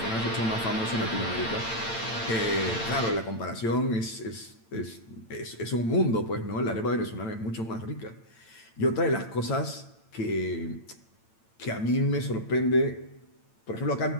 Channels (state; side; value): late; right; 8.9 ms